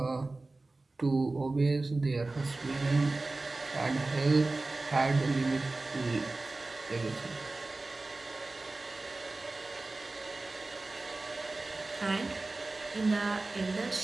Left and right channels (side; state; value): left; quieter; 3.2 dB